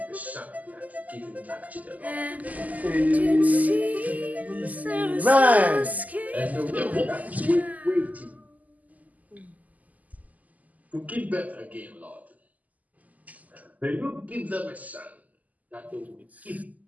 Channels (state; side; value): late; left; 0.078 ms